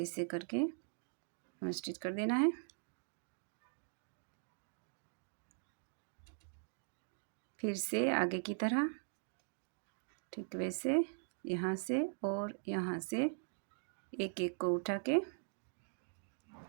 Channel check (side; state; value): left; silent; digital silence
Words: करके हमें स्टिच कर देना है। फिर से आगे की तरह ठीक वैसे यहाँ से और यहाँ से एक एक को उठा के